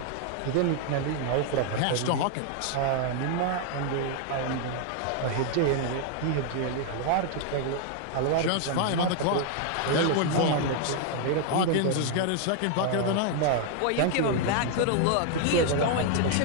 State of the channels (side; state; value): both; different; correlation 0.00